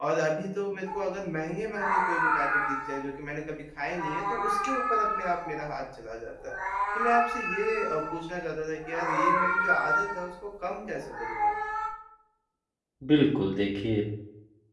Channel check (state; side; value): identical; both; correlation 1.00